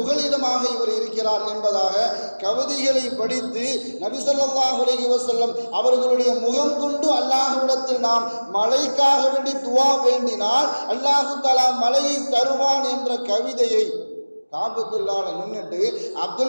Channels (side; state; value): both; inverted; correlation -1.00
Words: இவர் இருக்கிறார் என்பதாக கவிதைகளை படித்து நபி ஸல்லல்லாஹு அலைஹி வஸல்லம் அவர்களுடைய முகம் கொண்டு அல்லாஹ்விடத்தில் நாம் மழைக்காக வேண்டி துவா வேண்டினால் அல்லாஹ் தஆலா மழையை தருவான் என்ற கவிதையை காபத்துல்லாஹ்ல நின்னுட்டு